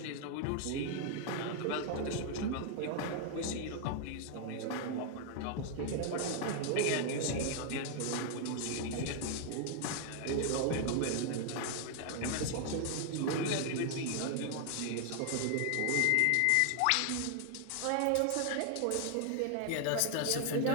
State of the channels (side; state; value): both; different; correlation 0.00